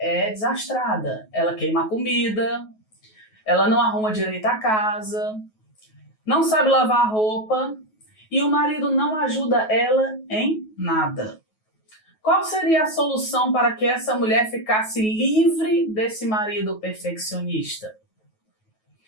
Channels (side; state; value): right; late; 9.3 ms